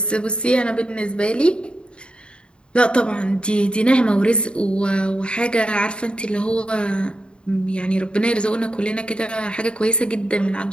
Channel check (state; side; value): late; right; 0.053 ms